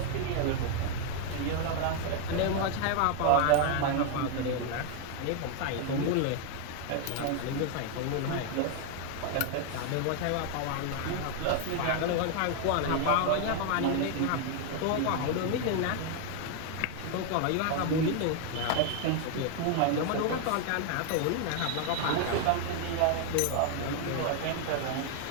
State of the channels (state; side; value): different; both; correlation 0.00